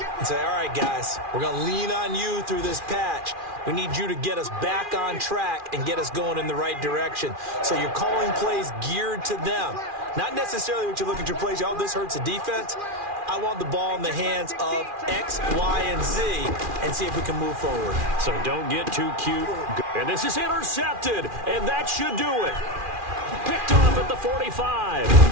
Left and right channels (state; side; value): late; left; 2.4 ms